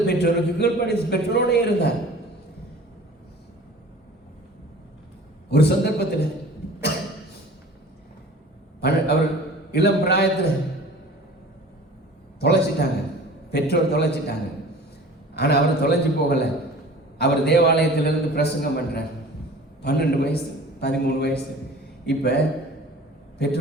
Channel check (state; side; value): normal; both; correlation 0.44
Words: பெற்றோருக்கு கீழ்ப்படி பெற்றோரோட இருந்தார். ஒரு சந்தர்ப்பத்தில் அவர் இளம் பிராயத்தில் தொலைச்சிட்டாங்க, பெற்றோர் தொலைச்சிட்டாங்க. ஆனா அவர் தொலைஞ்சு போகல. அவர் தேவாலயத்திலிருந்து பிரசங்கம் பண்றார். 12 வயசு 13 வயசு. இப்ப